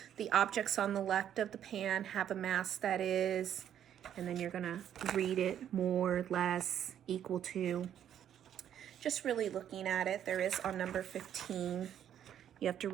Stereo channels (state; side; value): quieter; left; 10.0 dB